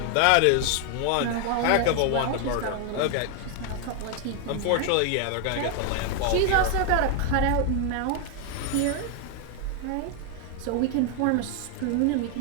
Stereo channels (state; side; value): different; both; correlation 0.01